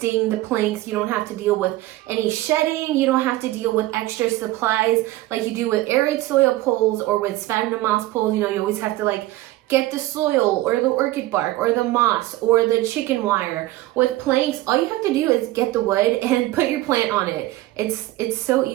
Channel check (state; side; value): quieter; left; 17.1 dB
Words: the planks. You don't have to deal with any shedding. You don't have to deal with extra supplies like you do with aeroid soil poles or with sphagnum moss poles. You know, you always have to like get the soil or the orchid bark or the moss or the chicken wire. With planks, all you have to do is get the wood and put your plant on it. It's so